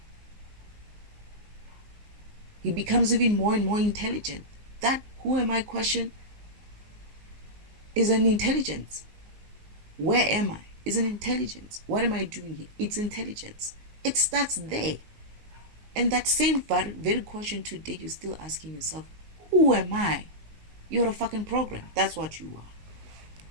He becomes even more and more intelligent. That who am I question is an intelligence. Where am I? Is an intelligence. What am I doing here? It's intelligence. It starts there. And that same very question today, you're still asking yourself, who am I? You're a fucking program. That's what you are.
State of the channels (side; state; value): left; late; 19 ms